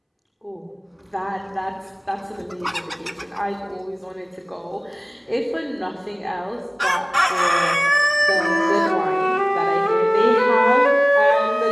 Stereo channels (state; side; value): identical; both; correlation 1.00